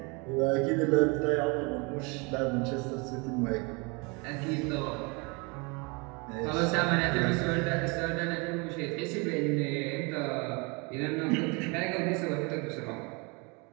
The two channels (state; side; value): quieter; left; 29.7 dB